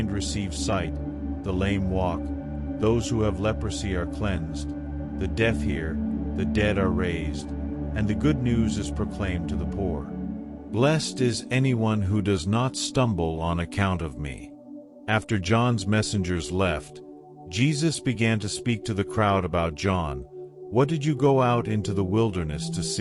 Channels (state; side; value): identical; both; correlation 1.00